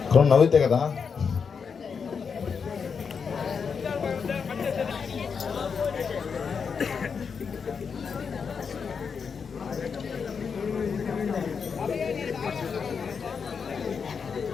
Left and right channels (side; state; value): right; quieter; 6.0 dB